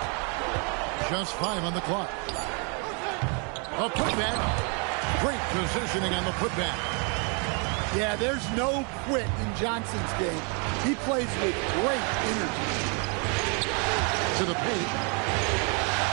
Just 5 on the clock. A putback. Great positioning on the putback. Yeah, there's no quit in Johnson's game. He plays with great energy. To the paint.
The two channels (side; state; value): left; quieter; 36.2 dB